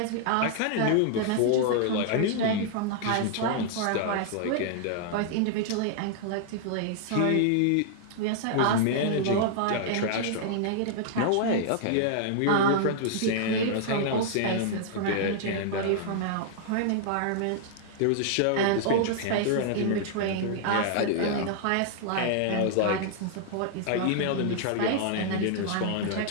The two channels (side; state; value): both; different; correlation -0.01